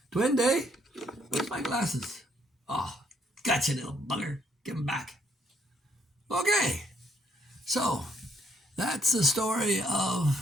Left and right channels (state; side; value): normal; both; correlation 0.70